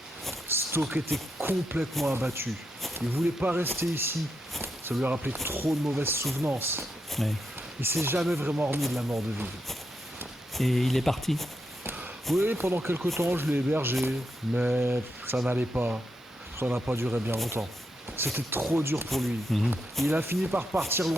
Stoke était complètement abattu. Il voulait pas rester ici. Ça lui a rappelé trop de mauvaises souvenances. Ouais. Il s'est jamais vraiment remis de la mort de Vive. Et il est parti? Oui, pendant quelque temps, je l'ai hébergé. Mais ça n'allait pas. Ça n'a pas duré bien longtemps. C'était trop dur pour lui. Il a fini par partir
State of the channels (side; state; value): both; normal; correlation 0.83